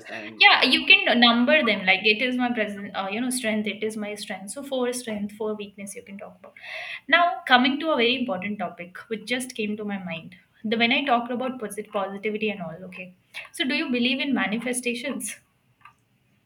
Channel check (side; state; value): both; identical; correlation 1.00